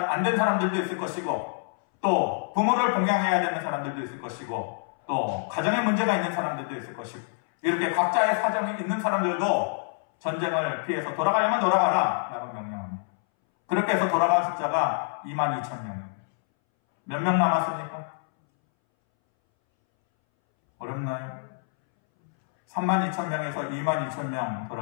안 된 사람들도 있을 것이고 또 부모를 봉양해야 되는 사람들도 있을 것이고 또 가정에 문제가 있는 사람들도 있을 것이고 이렇게 각자의 사정이 있는 사람들도 전쟁을 피해서 돌아가려면 돌아가라 라고 명령합니다. 그렇게 해서 돌아간 숫자가 22,000명입니다. 몇 명 남았습니까? 어렵나요? 32,000명에서 22,000명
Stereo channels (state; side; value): silent; right; 60 dB below the other